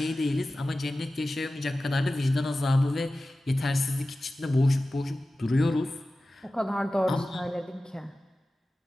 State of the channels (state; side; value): normal; both; correlation 0.95